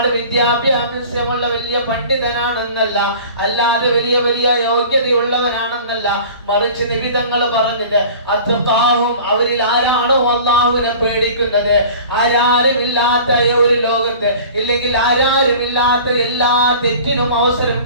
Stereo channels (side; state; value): both; inverted; correlation -0.43